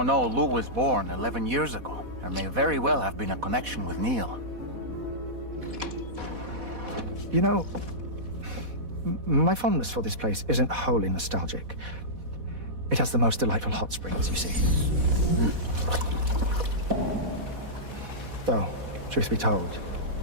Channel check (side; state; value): left; late; 4.1 ms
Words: know Lou was born 11 years ago. There may very well have been a connection with Neil. You know, my fondness for this place isn't wholly nostalgic. It has the most delightful hot springs, you see. Though, truth be told,